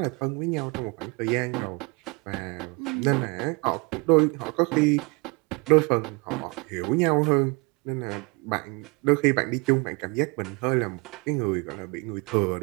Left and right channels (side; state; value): left; quieter; 29.8 dB